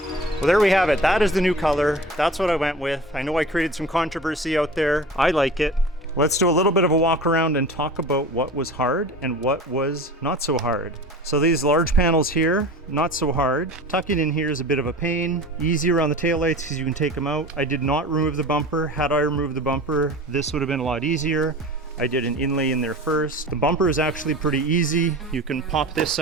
Well, there we have it. That is the new color. That's what I went with. I know I created some controversy out there. I like it. Let's do a little bit of a walk around and talk about what was hard and what was not so hard. So these large panels here, not so hard. Tucking in here is a bit of a pain. Easy around the taillights because you can take them out. I did not remove the bumper. Had I removed the bumper, this would have been a lot easier. I did an inlay in there first. The bumper is actually pretty easy. You can pop this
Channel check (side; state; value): both; normal; correlation 0.37